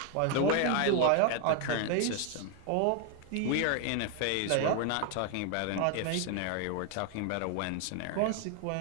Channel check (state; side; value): different; both; correlation 0.00